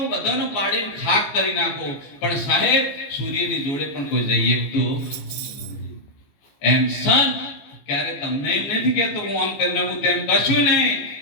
બધાને પાડીને ખાક કરી નાખું, પણ સાહેબ સૂર્યની જોડે પણ કોઈ જઈએ તો એમ સંત ક્યારે તમને એમ નથી કહેતો હું આમ કરી નાખું તેમ કશું નહીં.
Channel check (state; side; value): late; right; 15 ms